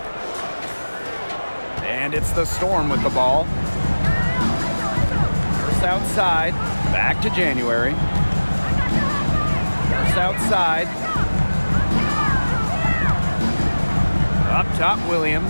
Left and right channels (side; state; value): both; inverted; correlation -1.00